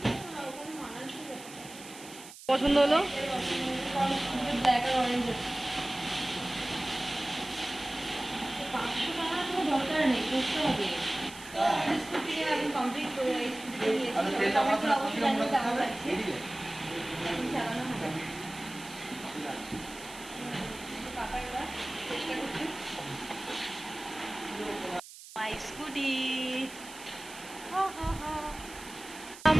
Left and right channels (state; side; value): noise; right; hiss, 16 dB below the sound